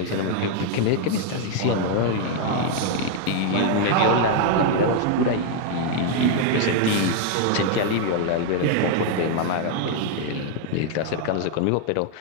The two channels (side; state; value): both; different; correlation 0.00